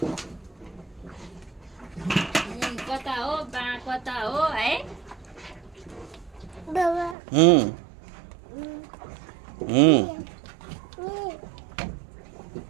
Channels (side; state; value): left; drops out; at 7.2 s